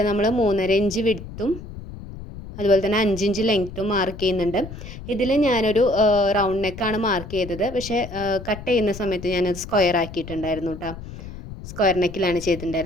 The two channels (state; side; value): noise; left; rumble, 12 dB below the sound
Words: നമ്മൾ 3.5 ഇഞ്ച് വിഡ്ത്തും അതുപോലെ തന്നെ 5 ഇഞ്ച് ലെങ്ത്തും മാർക്ക് ചെയ്യുന്നുണ്ട്. ഇതിൽ ഞാനൊരു റൗണ്ട് നെക്കാണ് മാർക്ക് ചെയ്തത്, പക്ഷേ കട്ട് ചെയ്യുന്ന സമയത്ത് ഞാനത് സ്ക്വയർ ആക്കിയിട്ടുണ്ടായിരുന്നു കേട്ടോ. സ്ക്വയർ നെക്കിലാണ്